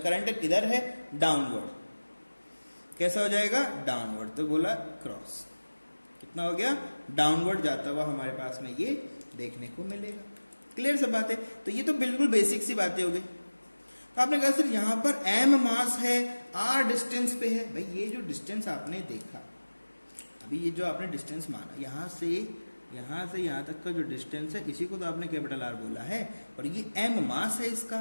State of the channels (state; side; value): inverted; both; correlation -1.00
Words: करंट किधर है डाउनवर्ड, कैसा हो जाएगा डाउनवर्ड, तो बोला क्रॉस, कितना हो गया डाउनवर्ड जाता हुआ हमारे पास में ये देखने को मिलेगा। क्लियर सब बात है, तो ये तो बिल्कुल बेसिक सी बातें हो गई। तो आपने कहा सर यहां पर m मास है, r डिस्टेंस पे है, भाई ये जो डिस्टेंस आपने देखा अभी, ये जो आपने डिस्टेंस माना यहां से यहां तक का जो डिस्टेंस है इसी को तो आपने कैपिटल R बोला है, और ये m मास है